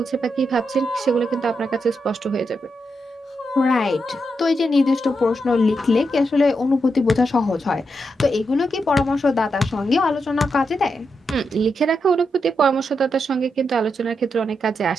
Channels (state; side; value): normal; both; correlation 0.84